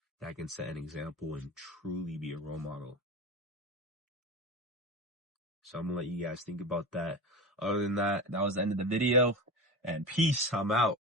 that can set an example and truly be a role model? So I'm gonna let you guys think about that. Other than that, that was the end of the video, and peace. I'm out.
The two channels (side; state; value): both; normal; correlation 0.27